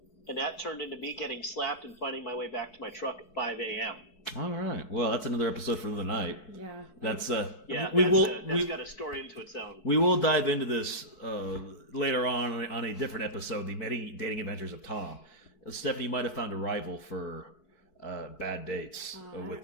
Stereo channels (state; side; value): late; right; 4.6 ms